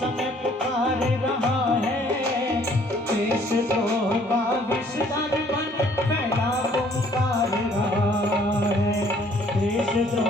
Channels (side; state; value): both; normal; correlation 0.60